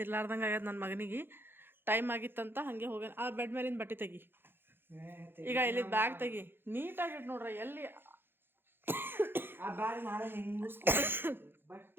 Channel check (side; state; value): left; late; 0.10 ms